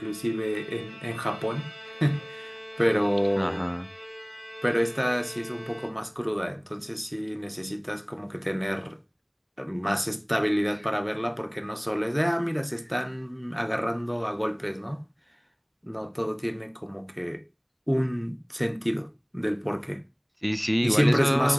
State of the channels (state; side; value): identical; both; correlation 1.00